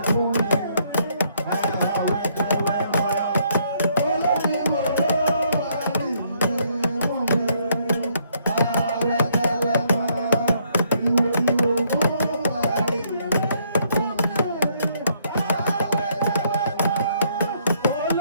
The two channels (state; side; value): inverted; both; correlation -0.70